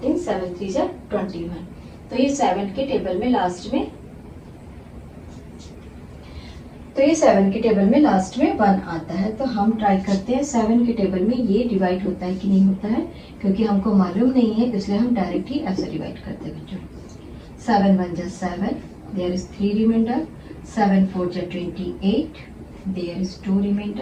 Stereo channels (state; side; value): identical; both; correlation 1.00